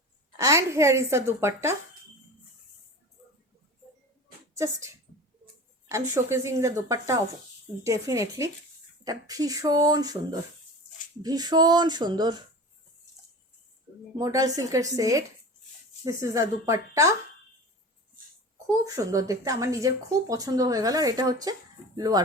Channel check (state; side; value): normal; both; correlation 0.34